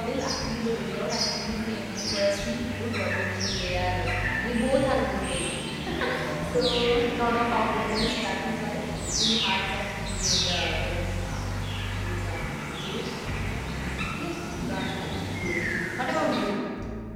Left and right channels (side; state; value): both; identical; correlation 1.00